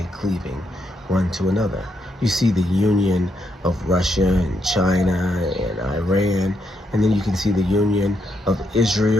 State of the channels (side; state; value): both; normal; correlation 0.78